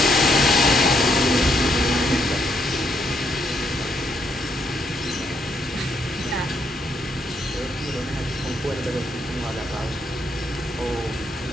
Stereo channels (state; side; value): normal; both; correlation 0.74